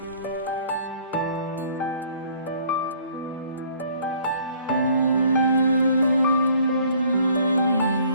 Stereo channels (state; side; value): inverted; both; correlation -0.57